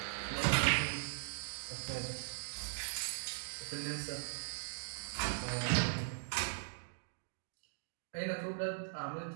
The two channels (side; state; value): left; silent; digital silence